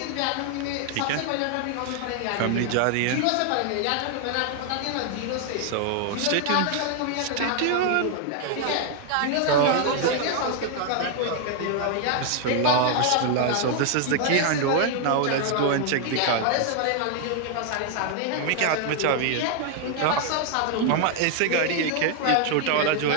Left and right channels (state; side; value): different; both; correlation 0.00